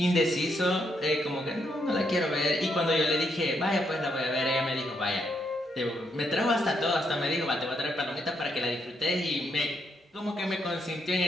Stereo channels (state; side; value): normal; both; correlation 0.77